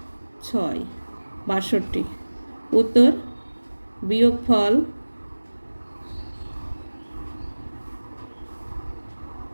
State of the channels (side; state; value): both; inverted; correlation -1.00